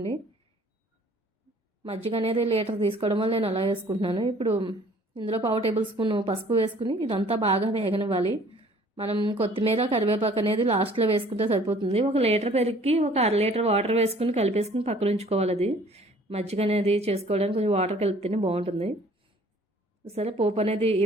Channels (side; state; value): both; normal; correlation 0.54